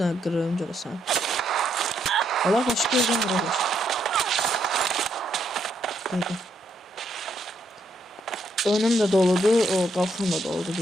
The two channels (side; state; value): both; normal; correlation 0.76